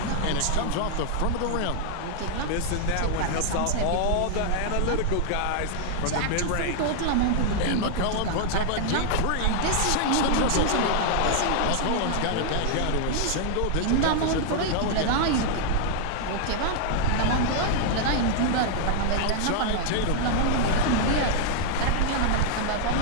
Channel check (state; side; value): different; both; correlation -0.01